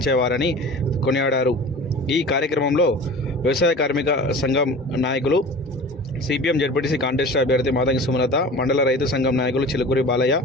కొనియాడారు. ఈ కార్యక్రమంలో వ్యవసాయ కార్మిక సంఘం నాయకులు, సిపిఎం జడ్పీటీసీ కాంటెస్ట్ అభ్యర్థి మాతంగి సుమలత, మండల రైతు సంఘం నాయకులు చిలుకూరి బాలయ్య,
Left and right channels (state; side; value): normal; both; correlation 0.38